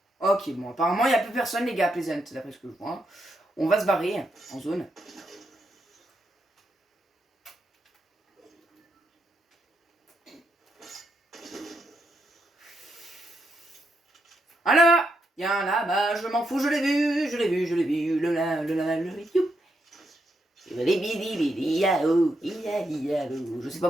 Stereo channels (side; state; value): both; normal; correlation 0.81